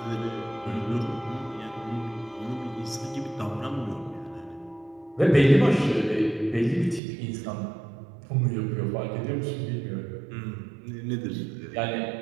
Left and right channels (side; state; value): left; drops out; at 7.0 s